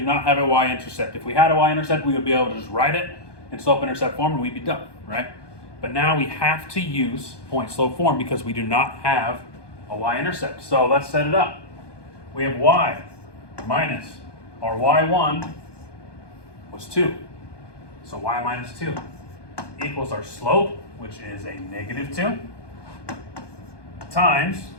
not have a y-intercept. If we had a y-intercept, we would be able to just write it in slope-intercept form and we'd be done, right? But now we have to use point-slope form because we do not have a y-intercept. So let's set it up. We have y minus our y1 was 2. So y minus 2 equals our slope, which is a negative 2, times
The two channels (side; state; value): right; late; 1.2 ms